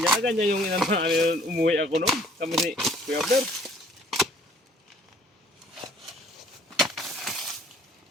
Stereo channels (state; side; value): normal; both; correlation 0.57